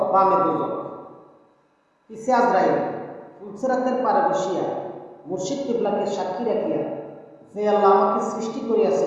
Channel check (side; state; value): both; identical; correlation 1.00